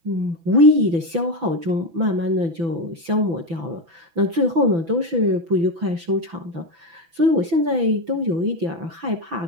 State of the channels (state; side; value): late; left; 6.0 ms